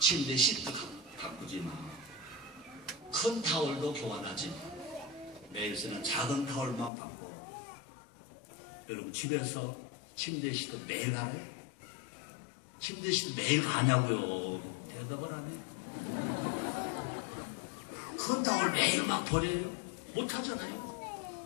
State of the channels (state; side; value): drops out; right; at 6.9 s